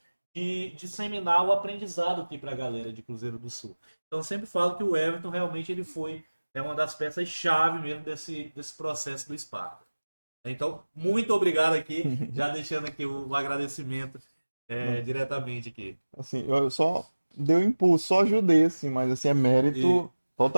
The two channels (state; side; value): inverted; both; correlation -1.00